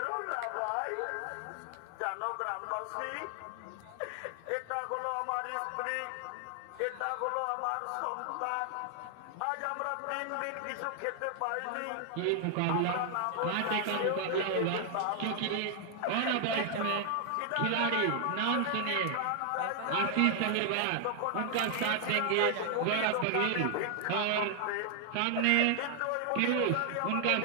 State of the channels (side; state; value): both; different; correlation 0.00